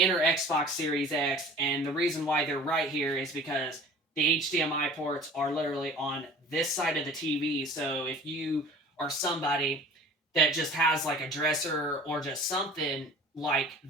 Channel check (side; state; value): both; normal; correlation 0.44